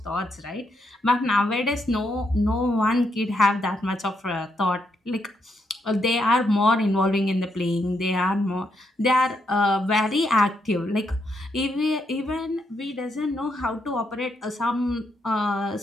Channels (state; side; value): normal; both; correlation 0.79